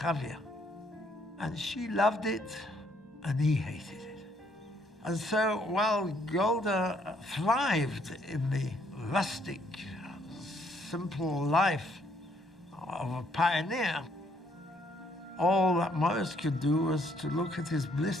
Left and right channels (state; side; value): normal; both; correlation 0.68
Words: And she loved it, and he hated it. And so while Golda thrived in the rustic, simple life of a pioneer, all that Morris could do was to look at his